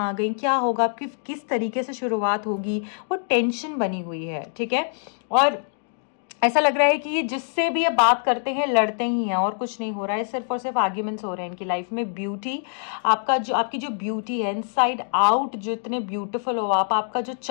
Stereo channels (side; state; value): right; silent; digital silence